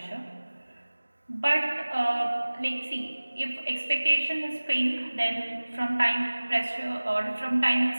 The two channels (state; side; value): inverted; both; correlation -1.00